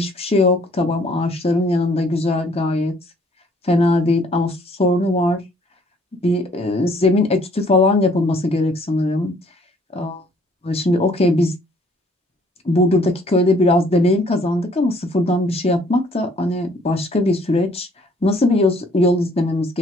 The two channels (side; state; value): both; normal; correlation 0.60